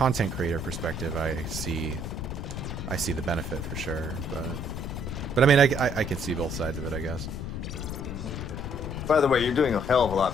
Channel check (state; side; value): noise; left; rumble, 6 dB below the sound